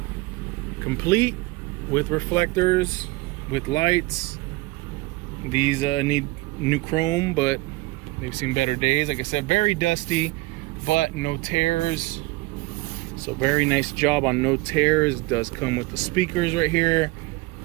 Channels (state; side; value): quieter; left; 21.5 dB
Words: Complete. with reflectors, with lights. These need new chrome, but they've seen better days. Like I said, very dusty, but no tears. So very nice job on no tears. It does come with the speakers right here.